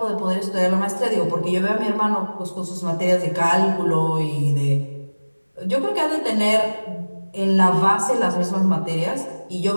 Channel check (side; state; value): both; inverted; correlation -1.00